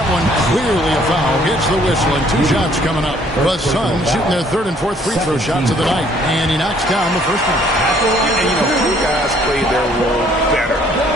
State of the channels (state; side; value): normal; both; correlation 0.62